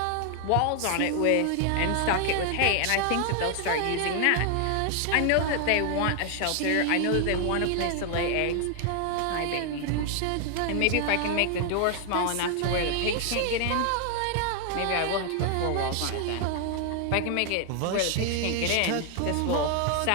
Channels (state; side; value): different; both; correlation 0.00